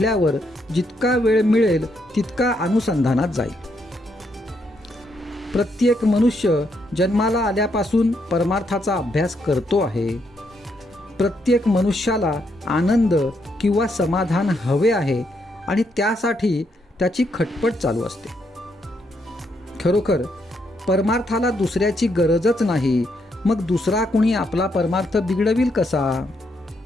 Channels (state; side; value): normal; both; correlation 0.77